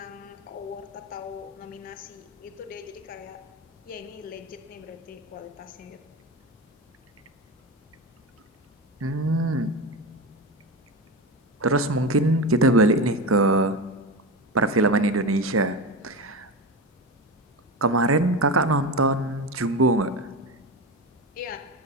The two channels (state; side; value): normal; both; correlation 0.22